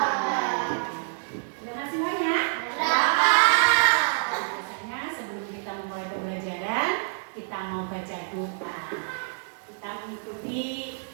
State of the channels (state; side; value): silent; left; 60 dB below the other